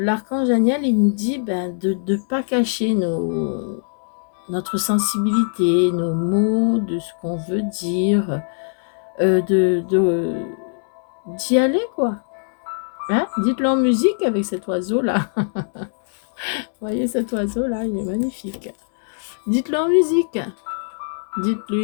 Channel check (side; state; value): right; silent; 65 dB below the other